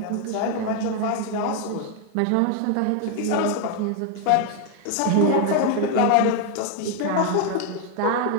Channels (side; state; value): both; different; correlation 0.00